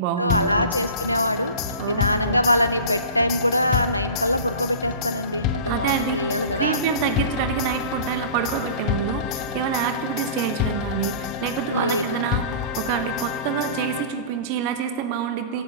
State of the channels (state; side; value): inverted; both; correlation -0.36